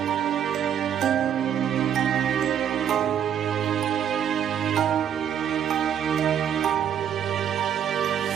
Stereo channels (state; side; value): quieter; left; 9.1 dB